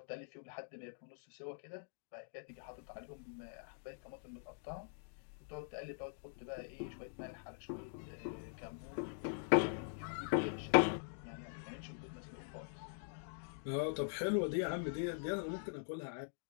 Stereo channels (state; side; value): silent; right; digital silence